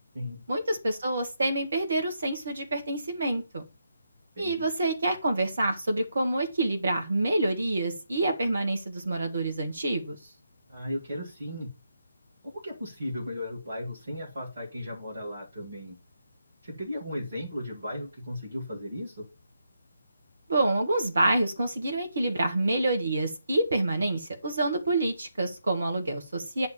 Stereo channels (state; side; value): inverted; both; correlation -0.81